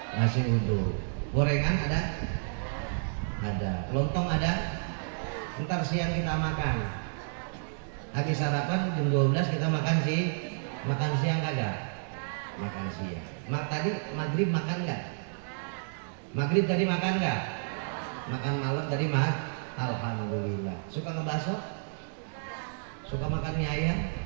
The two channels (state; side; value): silent; left; digital silence